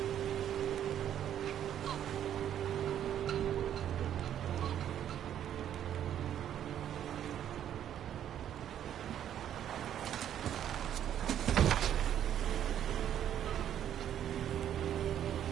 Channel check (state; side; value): quieter; left; 10.3 dB